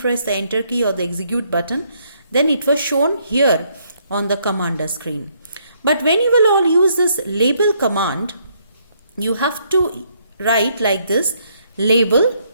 the enter key or the execute button, then it was shown here on the commander screen. But when you will all use this label command, you have to write like this, label.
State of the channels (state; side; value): inverted; both; correlation -0.71